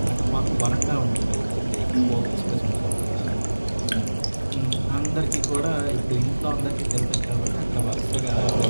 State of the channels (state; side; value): inverted; both; correlation -1.00